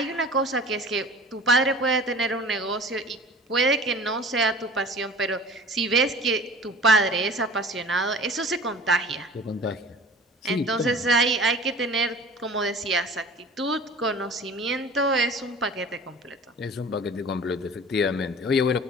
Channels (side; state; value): both; normal; correlation 0.43